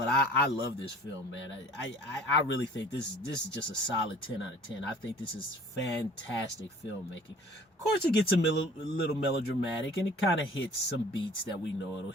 I love this film, man. I really think this is just a solid 10 out of 10. I think this is fantastic filmmaking. Of course, it gets a little melodramatic, and it kind of hits some beats that we know it'll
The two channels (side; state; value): both; normal; correlation 0.49